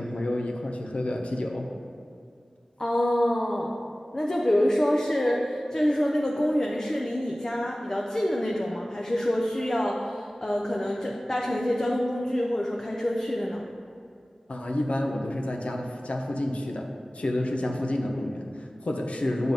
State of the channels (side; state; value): both; normal; correlation 0.97